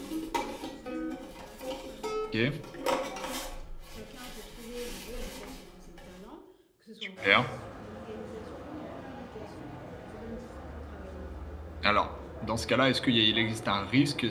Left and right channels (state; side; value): identical; both; correlation 1.00